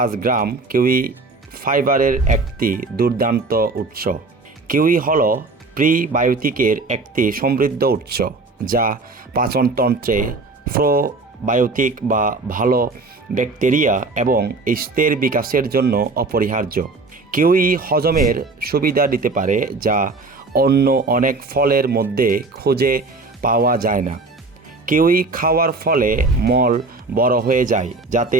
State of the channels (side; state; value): left; quieter; 3.6 dB